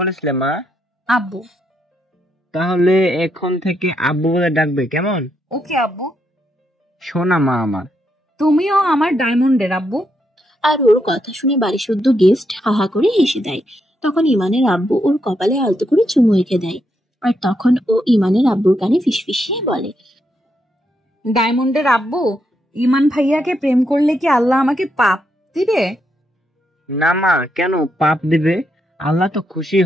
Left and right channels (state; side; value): normal; both; correlation 0.80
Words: মা? আব্বু। তাহলে এখন থেকে আব্বু বলে ডাকবে, কেমন? ওকে আব্বু। শোনা মা আমার। তুমিও আমার ডায়মন্ডের আব্বু। আর ওর কথা শুনে বাড়ি শুদ্ধ গেস্ট হাহা করে হেসে দেয়। তখন ইমানের আব্বু ওর কপালে আলতো করে চুমু এঁকে দেয়। আর তখন ও ইমানের আব্বুর কানে ফিসফিসিয়ে বলে, ডায়মন্ডের আব্বু, ইমান ভাইয়াকে প্রেম করলে কি আল্লাহ আমাকে পাপ দিবে? না মা, কেন পাপ দিবে? আল্লাহ তো খুশি